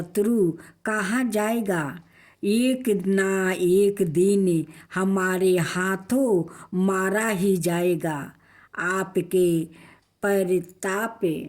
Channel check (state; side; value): identical; both; correlation 1.00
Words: कहाँ जाएगा? एक ना एक दिन हमारे हाथों मारा ही जाएगा। आपके परिताप